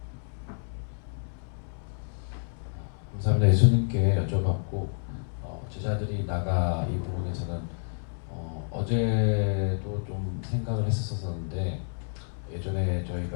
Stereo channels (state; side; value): silent; right; 58 dB below the other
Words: 감사합니다. 예수님께 여쭤봤고 제자들이 나가 이 부분에서는 어제도 좀 생각을 했었었는데 예전에